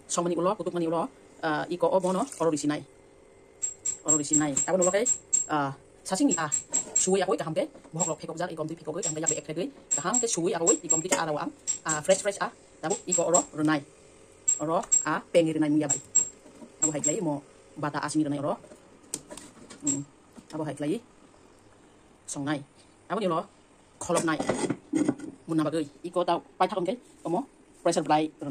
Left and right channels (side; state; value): both; identical; correlation 1.00